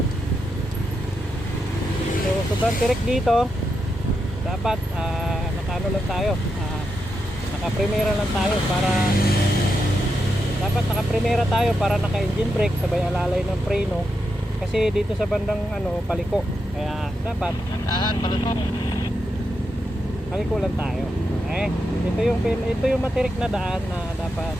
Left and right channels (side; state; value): both; normal; correlation 0.85